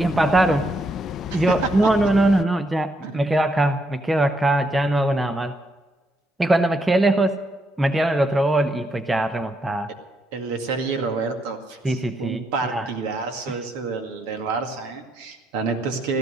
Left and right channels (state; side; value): normal; both; correlation 0.77